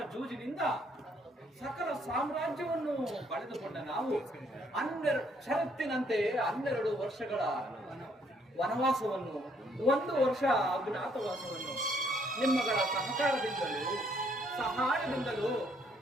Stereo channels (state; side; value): normal; both; correlation 0.68